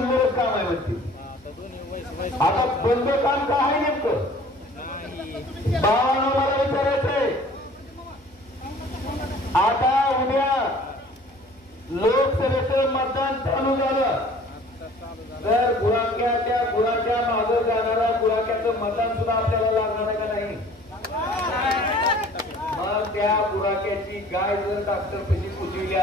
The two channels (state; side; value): noise; right; hum, 29 dB below the sound